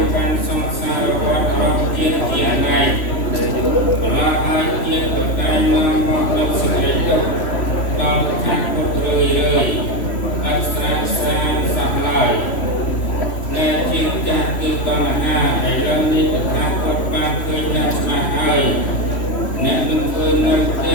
កាន់សង្សារវដ្តរបស់ជាតិជាណៃបន្លាហើយជាតិក៏តែនាំមកលើសេចក្តីទុក្ខដល់តថាពុទ្ធរឿយអស្ចារ្យសានសោះឡើយដែលជាចាស់គឺតណ្ហាឥឡូវនេះតថាពុទ្ធបានឃើញយ៉ាងច្បាស់ហើយអ្នកមិនឃើញនៅផ្ទ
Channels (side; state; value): right; late; 3.0 ms